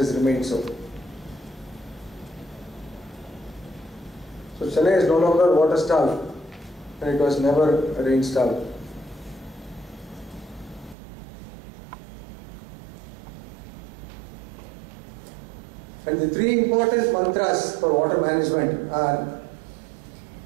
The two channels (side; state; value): left; drops out; at 11.0 s